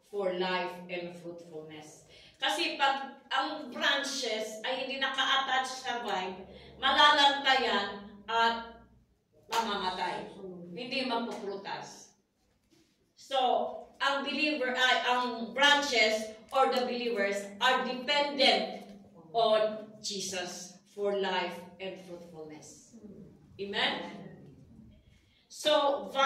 for life and fruitfulness. Kasi pag ang branches ay hindi naka-attach sa vine, malalantayan at mamamatay. Hindi magpuprutas. So, ang branches or the believers are dependent on Jesus for life and fruitfulness. Amen? So,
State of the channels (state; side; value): identical; both; correlation 1.00